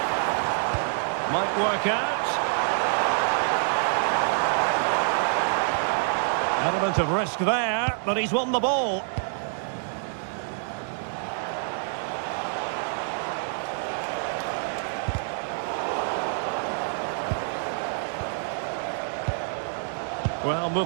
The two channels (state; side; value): silent; left; 60 dB below the other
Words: Might work out. Element of risk there, but he's won the ball. Well,